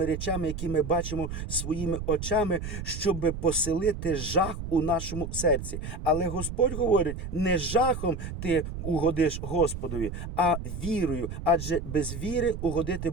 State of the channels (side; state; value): right; noise; rumble, 7 dB below the sound